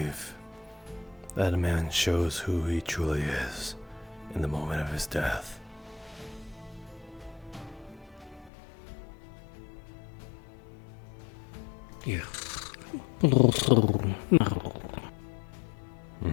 that a man shows who he truly is in the moment of his death? Yes. But also, no.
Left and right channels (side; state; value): right; drops out; at 8.5 s